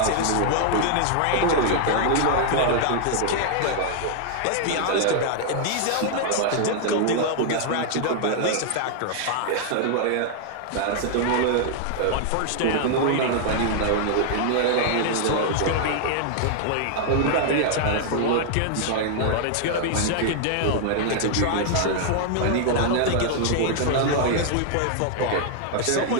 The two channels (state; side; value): different; both; correlation -0.01